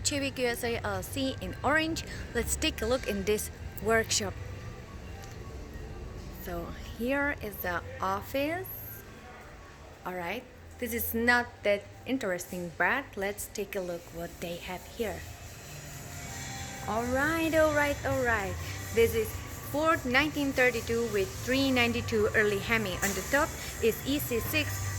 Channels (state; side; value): identical; both; correlation 1.00